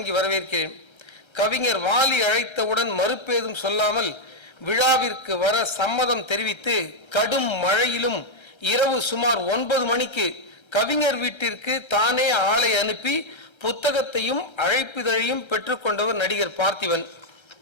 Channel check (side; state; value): right; late; 1.3 ms